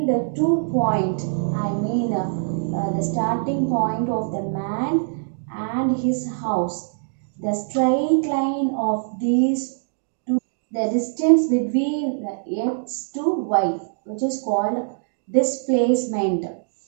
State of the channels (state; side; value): silent; left; digital silence